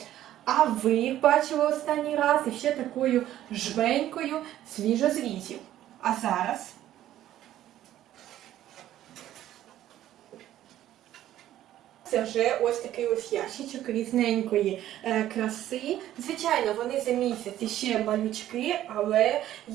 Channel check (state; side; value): quieter; left; 12.9 dB